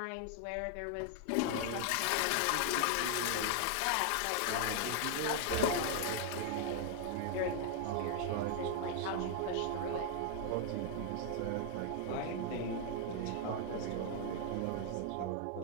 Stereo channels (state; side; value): different; both; correlation 0.00